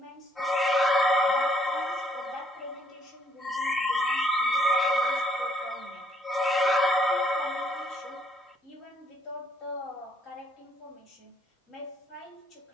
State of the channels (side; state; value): both; normal; correlation 0.68